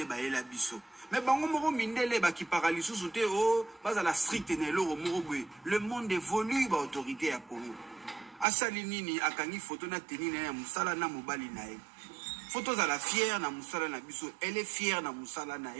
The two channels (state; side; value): drops out; left; at 8.5 s